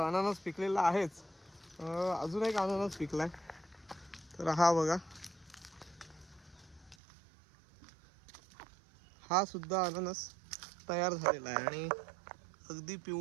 पिकलेला आहेच. अजून एक अननस पिकलाय. तर हा बघा, हा सुद्धा अननस तयार झालेला आहे आणि अगदी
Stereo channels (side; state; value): left; drops out; at 7.0 s